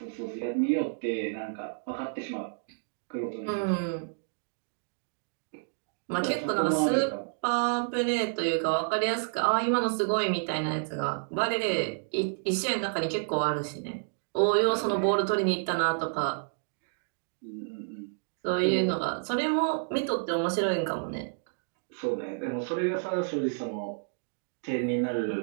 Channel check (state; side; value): silent; left; digital silence